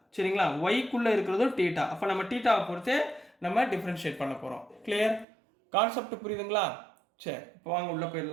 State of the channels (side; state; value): left; drops out; at 5.2 s